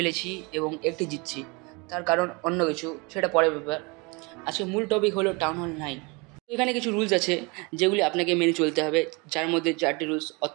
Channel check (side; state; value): left; quieter; 28.4 dB